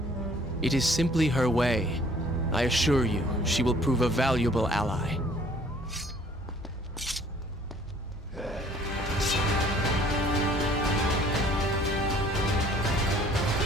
It is simply her way. I assure you, she will prove a valuable ally.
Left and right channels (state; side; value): normal; both; correlation 0.56